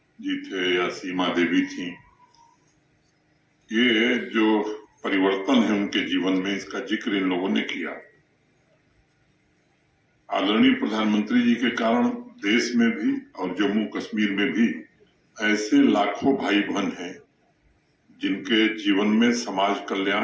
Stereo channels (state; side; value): identical; both; correlation 1.00